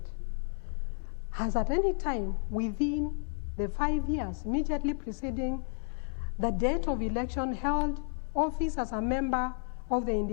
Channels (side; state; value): right; silent; 56 dB below the other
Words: has at any time within the 5 years immediately preceding the date of election held office as a member of the